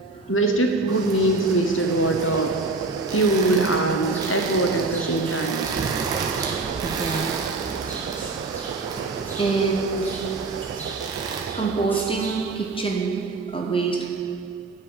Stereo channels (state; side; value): quieter; left; 3.3 dB